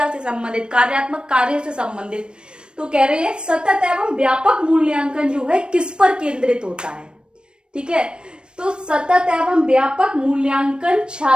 से संबंधित, कार्यात्मक कार्यों से संबंधित। तो कह रहे हैं सतत एवं व्यापक मूल्यांकन जो है किस पर केंद्रित होता है, ठीक है। तो सतत एवं व्यापक मूल्यांकन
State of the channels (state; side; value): late; left; 0.054 ms